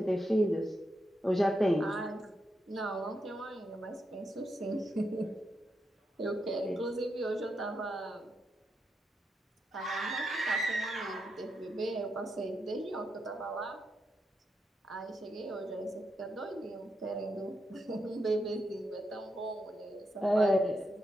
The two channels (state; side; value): normal; both; correlation 0.84